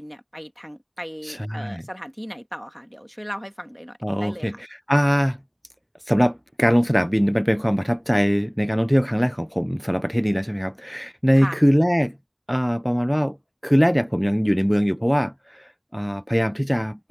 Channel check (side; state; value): both; identical; correlation 1.00